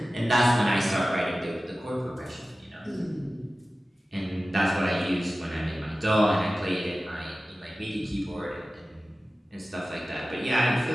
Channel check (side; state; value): both; normal; correlation 0.96